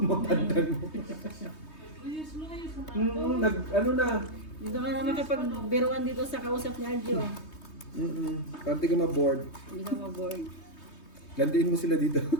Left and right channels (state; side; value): late; right; 3.2 ms